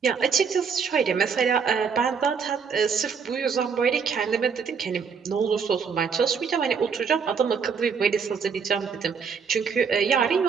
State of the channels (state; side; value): quieter; left; 6.1 dB